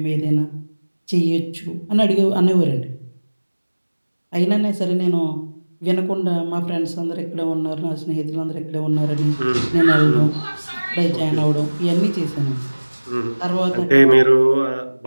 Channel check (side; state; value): both; inverted; correlation -1.00